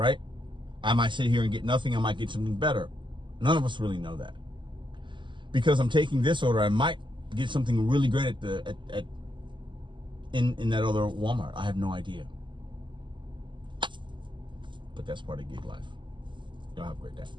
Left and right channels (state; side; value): late; left; 0.23 ms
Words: I might sit here and get nothing. I might get something better. None of us really know that. Because I'm taking this order, I might get something really great in that other Walmart. I have no idea. But that's part of gig life. Y'all have a great day.